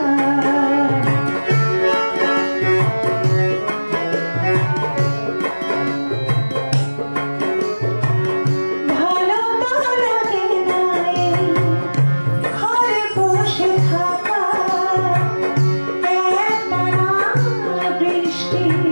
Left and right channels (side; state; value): both; inverted; correlation -1.00